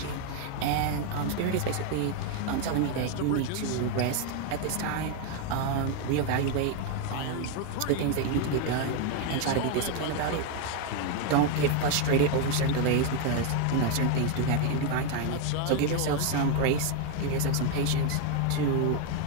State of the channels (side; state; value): both; different; correlation 0.01